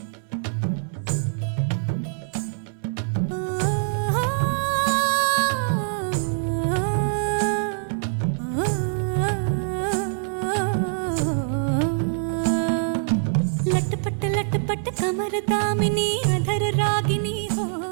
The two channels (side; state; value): left; silent; 59 dB below the other